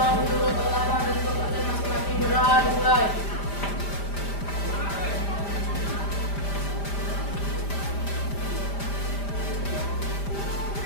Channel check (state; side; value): late; right; 5.0 ms